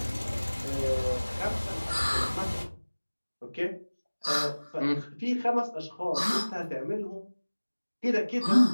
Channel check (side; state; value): both; inverted; correlation -1.00